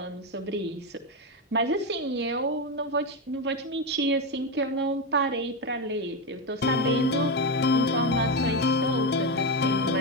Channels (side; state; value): both; normal; correlation 0.11